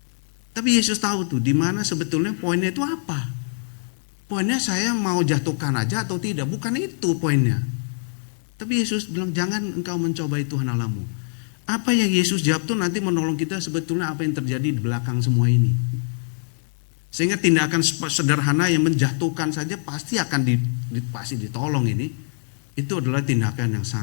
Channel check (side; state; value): right; silent; digital silence